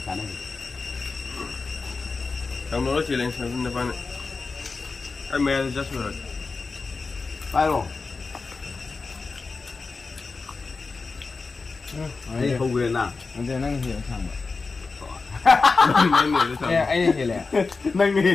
cái này trong đó chỉ lên xem nó phải cái mẹ rất rồi phải rồi ấy không về nào anh đây năng hiểu thằng nên người vậy anh hiểu lẽ nâng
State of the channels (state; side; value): quieter; right; 4.2 dB